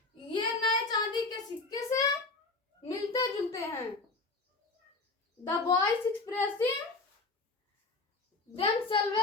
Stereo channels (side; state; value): right; quieter; 3.7 dB